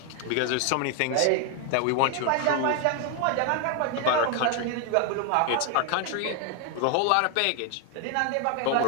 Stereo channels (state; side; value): different; both; correlation 0.01